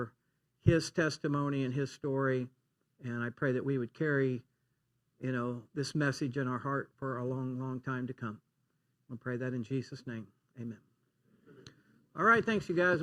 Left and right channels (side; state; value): both; identical; correlation 1.00